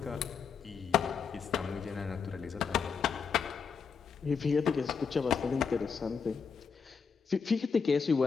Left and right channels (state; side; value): quieter; right; 5.9 dB